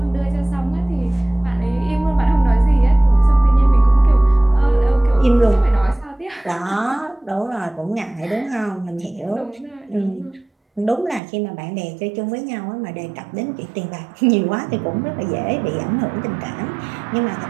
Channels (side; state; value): left; drops out; at 11.2 s